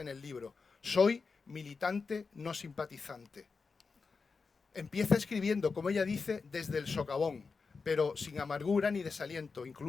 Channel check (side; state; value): right; quieter; 4.7 dB